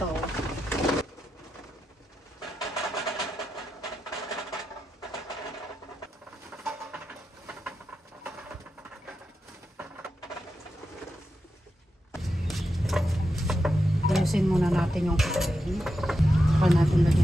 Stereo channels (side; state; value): both; normal; correlation 0.88